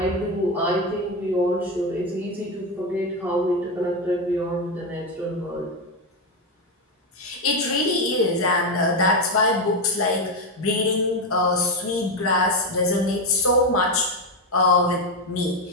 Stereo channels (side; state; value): both; normal; correlation 0.10